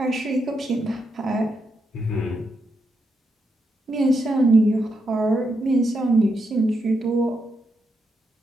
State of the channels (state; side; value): normal; both; correlation 0.83